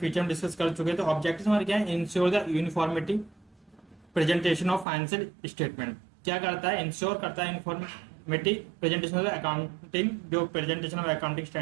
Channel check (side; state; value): left; drops out; at 4.9 s